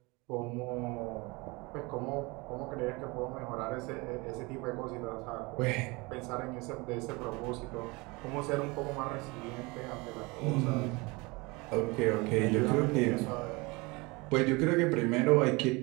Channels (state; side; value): quieter; left; 25.6 dB